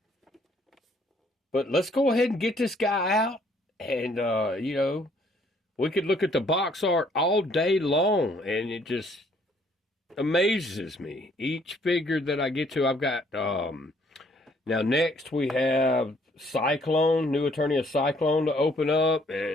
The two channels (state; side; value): normal; both; correlation 0.64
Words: But let's go ahead and get this guy out, and you know, we could look at the box art all day long, and it just amazes me. Each figure that I get to, I've got, now next we have Cyclone, New Eternia Cyclone to open up,